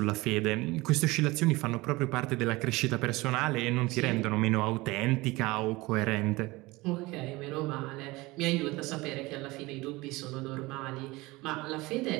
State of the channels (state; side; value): quieter; left; 21.6 dB